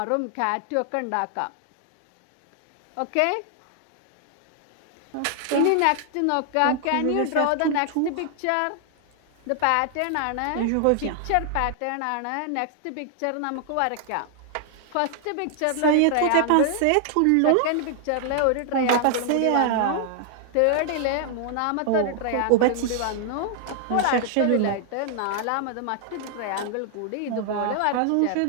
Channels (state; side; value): different; both; correlation 0.00